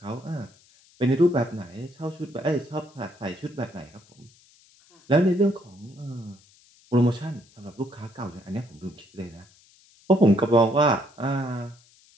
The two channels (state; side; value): noise; left; hiss, 29 dB below the sound